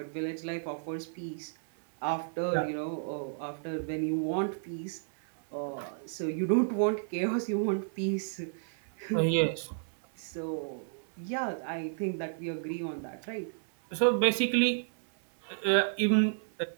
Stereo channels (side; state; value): left; silent; 56 dB below the other